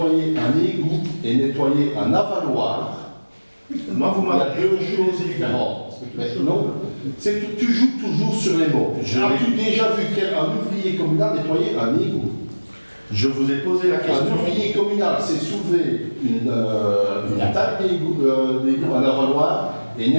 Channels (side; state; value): both; inverted; correlation -1.00